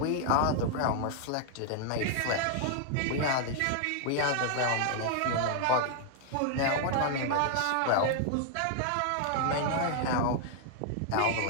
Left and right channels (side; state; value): both; different; correlation 0.00